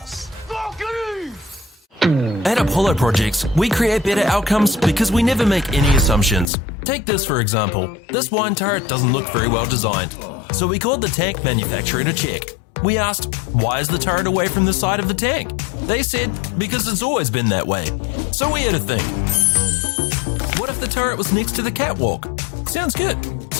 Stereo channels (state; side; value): drops out; right; at 6.5 s